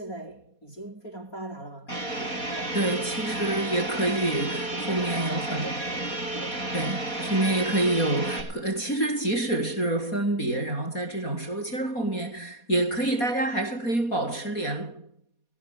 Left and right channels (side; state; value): right; late; 4.2 ms